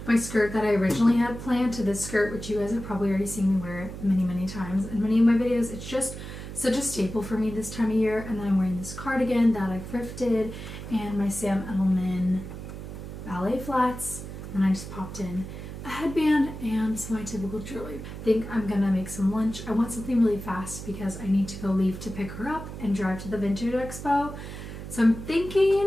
my skirt that I originally had planned to this skirt, which you guys have probably already seen me wear many, many times in many of my videos. It's just such a staple for me this time of year. And then I'm wearing this cardigan that I thrifted and my Sam Edelman ballet flats. And I just popped in a headband and some of my typical jewelry. I think I'm gonna make some lunch. I want something really fast because I need to go leave to pick her up and drive to the Vintage Expo. So I'm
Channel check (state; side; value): noise; right; hum, 10 dB below the sound